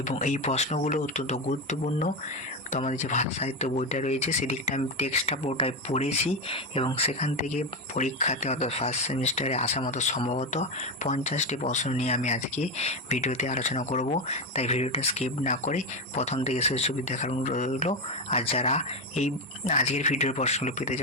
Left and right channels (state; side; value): normal; both; correlation 0.13